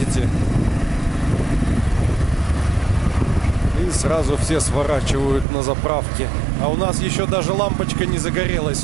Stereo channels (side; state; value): left; drops out; at 5.5 s